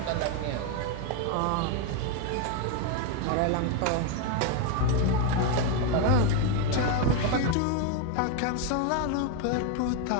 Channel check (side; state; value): both; different; correlation 0.01